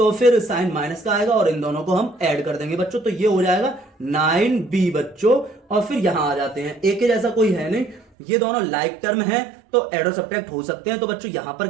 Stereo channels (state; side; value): drops out; left; at 8.1 s